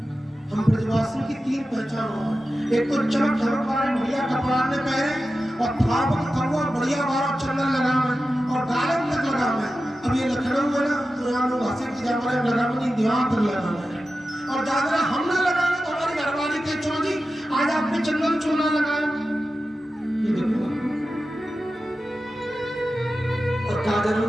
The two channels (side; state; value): both; normal; correlation 0.93